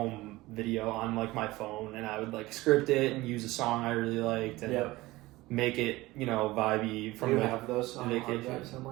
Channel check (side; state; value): left; quieter; 19.3 dB